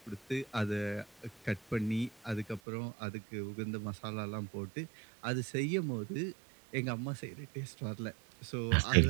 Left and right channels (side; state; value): left; drops out; at 2.6 s